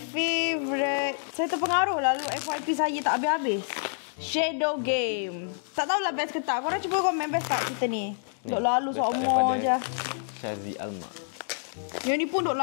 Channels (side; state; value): right; silent; digital silence